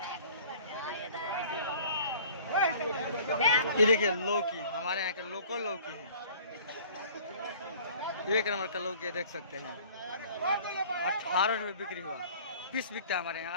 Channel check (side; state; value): both; inverted; correlation -0.49